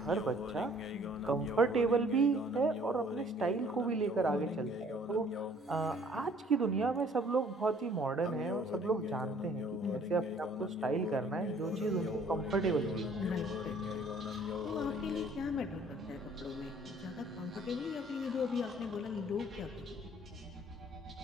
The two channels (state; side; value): normal; both; correlation 0.57